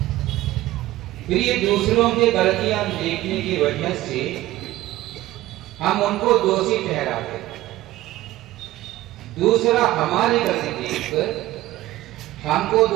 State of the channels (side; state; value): left; quieter; 16.2 dB